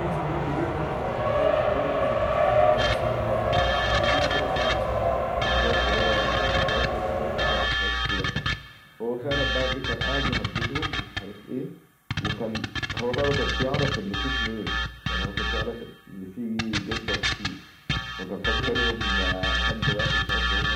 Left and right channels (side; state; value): both; identical; correlation 1.00